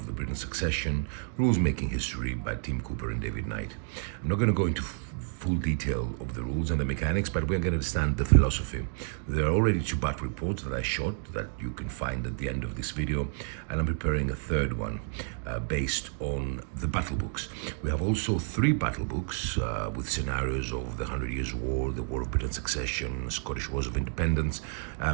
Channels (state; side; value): silent; left; 55 dB below the other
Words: the British Succession, rules making history by Tim Cooper and David Knight. I'm not going to go into full detail of the rules and the mechanics, but we're going to understand the philosophy. There are already 2 battle reports that I shot that you can find at the end of this video, and I'm preparing a third one based on the battle books. We have also 3 battle books with scenarios of the 100 Years War, the War of British Succession, Scottish Wars of Independence,